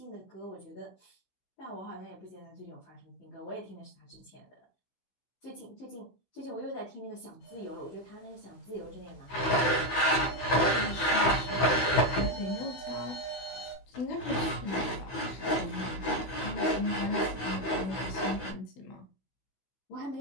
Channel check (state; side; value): late; right; 15 ms